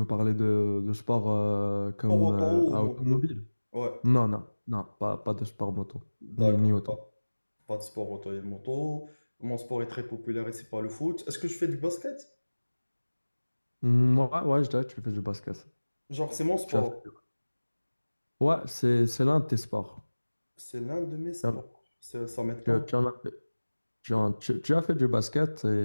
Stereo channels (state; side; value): inverted; both; correlation -1.00